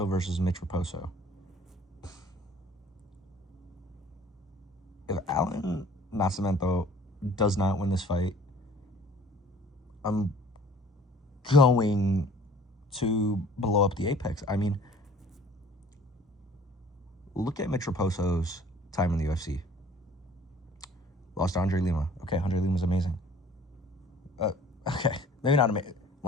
versus Mitch Raposo. If Alan Nascimento does not win this fight, I'm going to blow up the Apex. I mean, look at Mitch Raposo's time in the UFC. Lost to Andre Lima. Okay, Andre Lima's amazing. Okay, maybe not amazing.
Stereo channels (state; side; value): normal; both; correlation 0.51